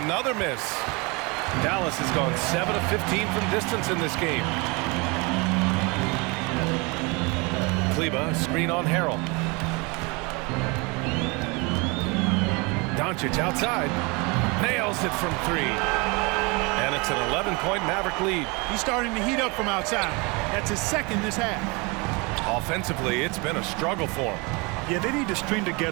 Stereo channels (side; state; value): left; quieter; 28.1 dB